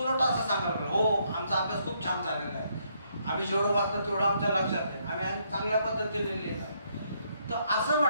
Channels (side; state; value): both; inverted; correlation -0.73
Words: असं सांगाल हो आमचा अभ्यास खूप छान झालेला आहे, आम्ही जेवढं वाचलं तेवढं आमच्या लक्षात आहे, आम्ही चांगल्या पद्धतीने लिहिलं आहे. तर असं